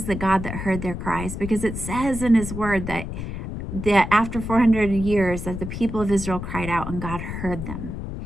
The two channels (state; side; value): noise; left; rumble, 6 dB below the sound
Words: the God that heard their cries, because it says in his word that after 400 years that the people of Israel cried out and God heard them.